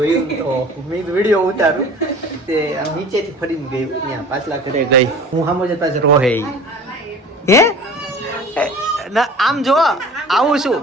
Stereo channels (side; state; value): both; normal; correlation 0.42